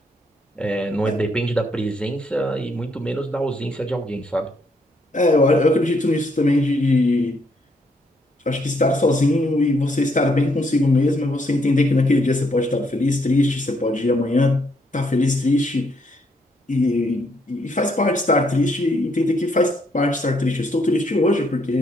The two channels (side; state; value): both; normal; correlation 0.72